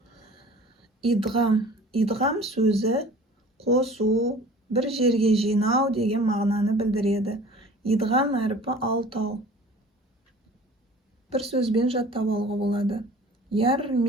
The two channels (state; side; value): normal; both; correlation 0.45